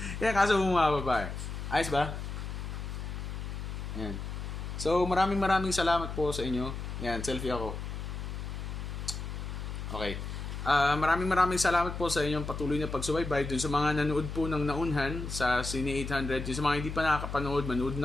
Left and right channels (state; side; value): noise; left; hum, 6 dB below the sound